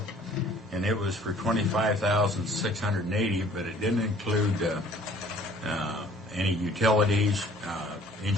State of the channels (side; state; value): both; normal; correlation 0.54